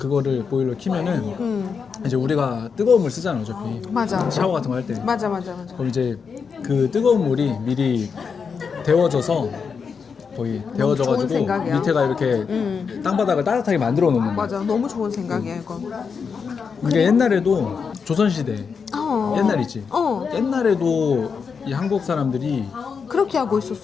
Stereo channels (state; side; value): quieter; right; 5.9 dB